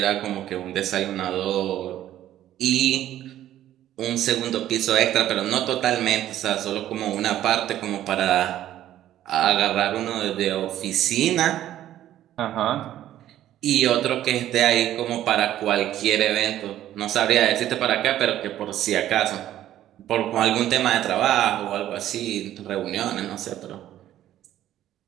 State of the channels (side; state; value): left; quieter; 12.5 dB